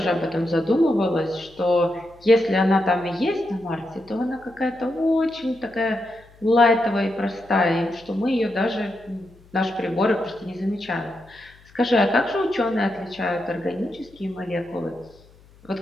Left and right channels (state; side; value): noise; left; hum, 27 dB below the sound